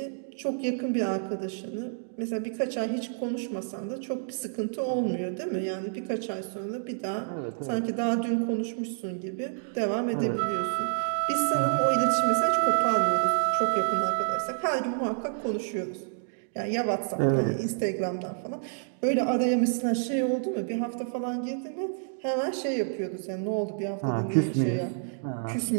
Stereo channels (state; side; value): silent; left; digital silence